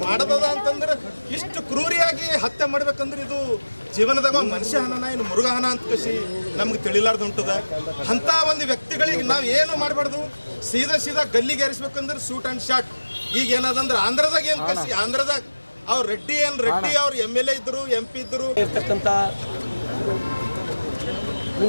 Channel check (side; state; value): both; inverted; correlation -1.00